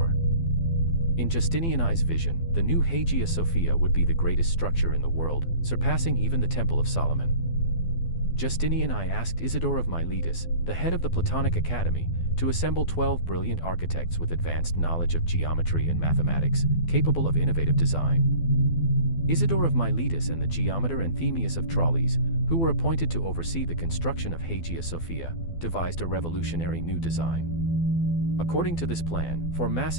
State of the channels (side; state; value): right; late; 12 ms